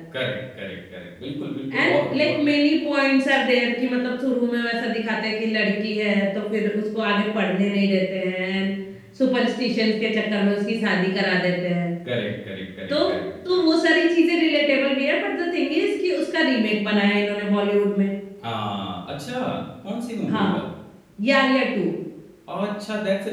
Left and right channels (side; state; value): both; identical; correlation 1.00